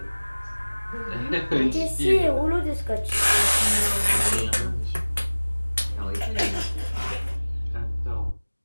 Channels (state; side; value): inverted; both; correlation -1.00